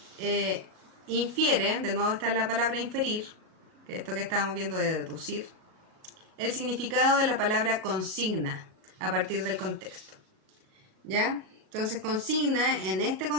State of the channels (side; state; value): left; late; 37 ms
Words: Infiere, de nuevo está la palabra inferir, que es esto que estábamos viendo de deducir, el significado de la palabra consigna a partir del contexto. ¿Ya? Entonces consigna en este